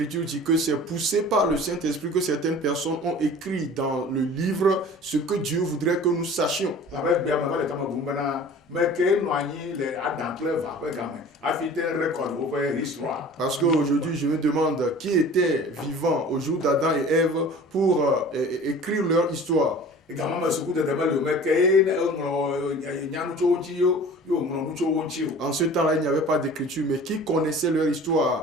dit que c'est poussé par le Saint-Esprit que certaines personnes ont écrit dans le livre ce que Dieu voudrait que nous sachions. Parce qu'aujourd'hui, je me demande qui était vivant au jour d'Adam et Ève pour écrire leur histoire. En ce temps-là, il n'y avait pas d'écriture, mais qui connaissait leur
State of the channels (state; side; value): normal; both; correlation 0.43